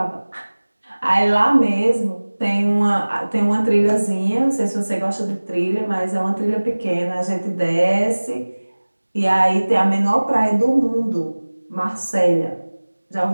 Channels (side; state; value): both; inverted; correlation -1.00